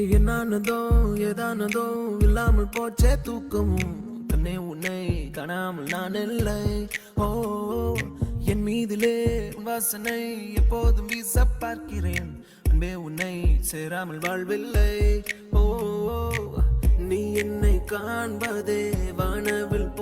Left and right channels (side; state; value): both; identical; correlation 1.00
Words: என்னானதோ ஏதானதோ இல்லாமல் போச்சே தூக்கமும், கண்ணே உன்னை காணாமல் நான் இல்லை. ஓ என் மீதிலே வாசனை எப்போதும் வீச பார்க்கிறேன், அன்பே உன்னை சேராமல் வாழ்வில்லை. ஓ நீ என்னை காண்பதே வானவில்